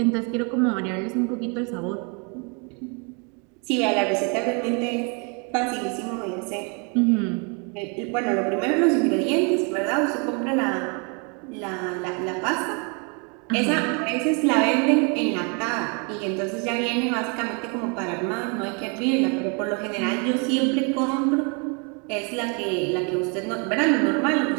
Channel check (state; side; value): quieter; left; 34.9 dB